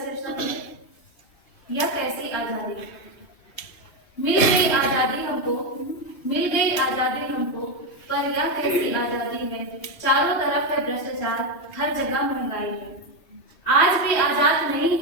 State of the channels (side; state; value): right; late; 2.7 ms